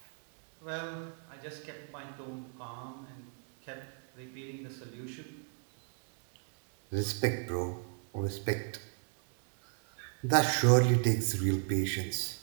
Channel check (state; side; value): silent; left; 54 dB below the other